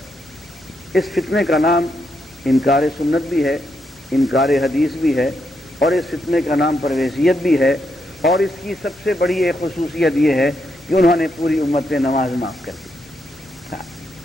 اس فتنے کا نام انکار سنت بھی ہے, انکار حدیث بھی ہے, اور اس فتنے کا نام پرویزیت بھی ہے. اور اس کی سب سے بڑی ایک خصوصیت یہ ہے کہ انہوں نے پوری امت پہ نماز معاف کر دی,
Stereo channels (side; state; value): both; normal; correlation 0.80